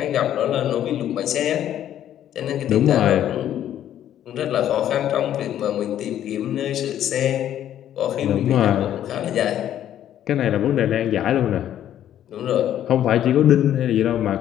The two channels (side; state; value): right; quieter; 11.2 dB